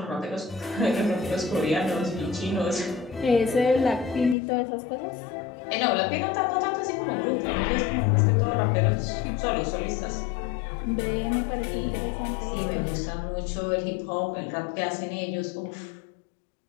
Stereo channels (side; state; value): right; drops out; at 4.4 s